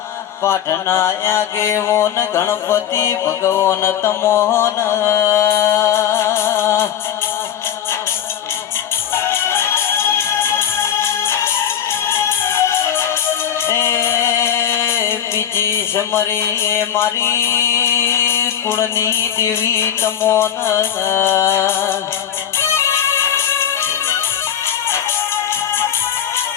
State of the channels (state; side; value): quieter; right; 9.7 dB